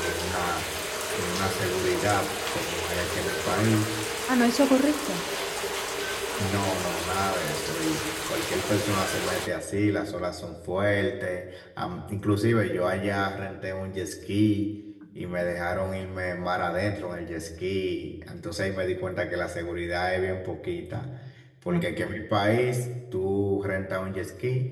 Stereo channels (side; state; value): both; identical; correlation 1.00